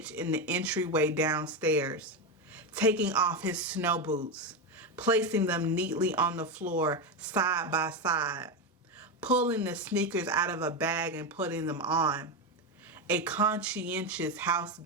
in the entryway downstairs, taking off his snow boots, placing them neatly on the floor side by side, pulling the sneakers out of a bag and putting them on. A conscientious house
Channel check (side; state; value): both; normal; correlation 0.12